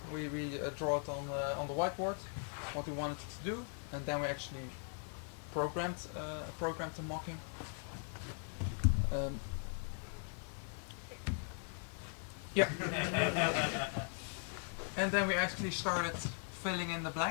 We draw it on the whiteboard what we wanted it to do, and then we actually programmed the mocking. Yeah. And then we actually started filling in the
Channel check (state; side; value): silent; right; 51 dB below the other